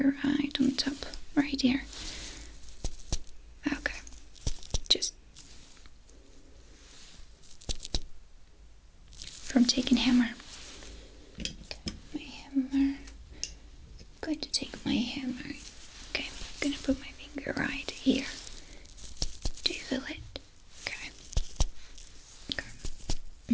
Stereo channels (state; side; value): identical; both; correlation 1.00